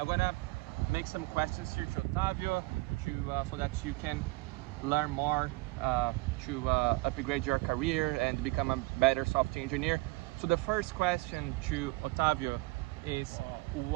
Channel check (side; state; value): left; quieter; 23.3 dB